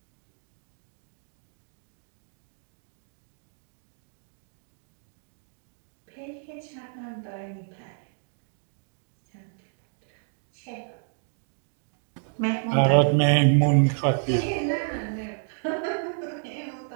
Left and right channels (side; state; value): left; silent; 58 dB below the other